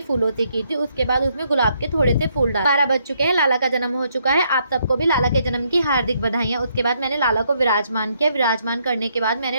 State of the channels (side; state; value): both; inverted; correlation -0.73